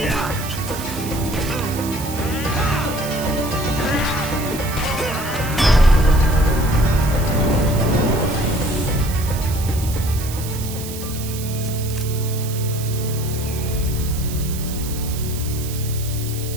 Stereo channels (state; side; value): noise; right; hiss, 11 dB below the sound